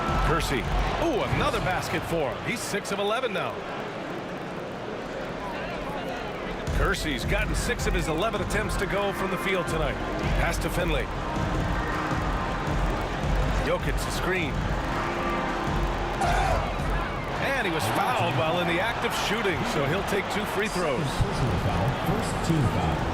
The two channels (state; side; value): identical; both; correlation 1.00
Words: Kersey. Ooh, another basket for him. He's 6 of 11 now. Kersey's gotten 6 of his 11 attempts to go from the field tonight. Pass to Finley. Jokic the screen. And he was fouled while in the act of shooting, so he'll take 2 free throws. Personal foul, first team foul.